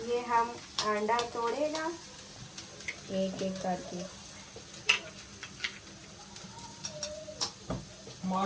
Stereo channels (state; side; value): identical; both; correlation 1.00